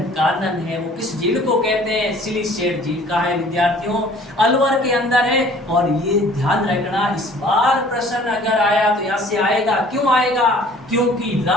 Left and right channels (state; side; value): normal; both; correlation 0.52